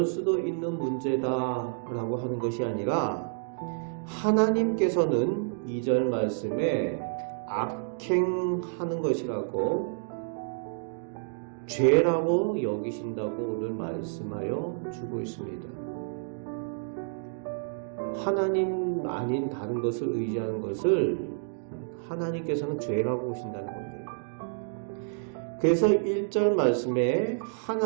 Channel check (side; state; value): left; silent; digital silence